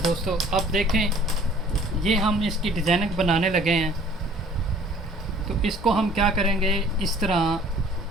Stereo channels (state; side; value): normal; both; correlation 0.53